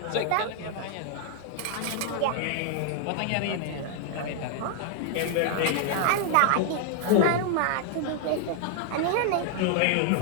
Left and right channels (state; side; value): different; both; correlation 0.00